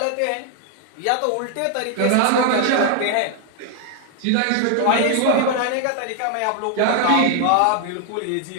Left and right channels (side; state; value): both; different; correlation 0.00